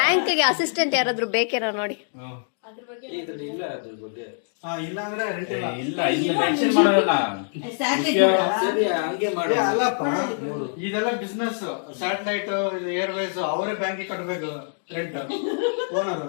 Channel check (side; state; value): right; silent; digital silence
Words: ಅಸಿಸ್ಟೆಂಟ್ ಯಾರಾದ್ರೂ ಬೇಕೇನೋ ನೋಡಿ. ಇದ್ರಲ್ಲಿ ಇಲ್ಲ ಅದ್ರ ಬಗ್ಗೆ. ಇಲ್ಲ ಅಂದ್ರೆ ರೆಂಟ್ ಇಲ್ಲ. ಇಲ್ಲ ಇಲ್ಲಿ ಮೆನ್ಷನ್ ಮಾಡೋಲ್ಲ. ಸರಿ ಹಂಗೆ ಮಾಡು. ಅಲ್ಲಪ್ಪ, ಇದೆಲ್ಲ ಬಿಸ್ನೆಸ್. ಸ್ಯಾಟಲೈಟ್, ಏರ್ವೇಸ್ ಅವರೇ ಬ್ಯಾಂಕಿಗೆ ಕಟ್ಟಬೇಕು. ಓನರ್